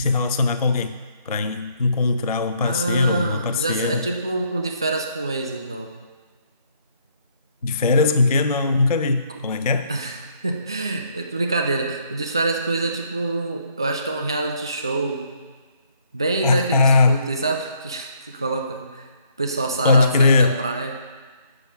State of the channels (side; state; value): both; inverted; correlation -0.67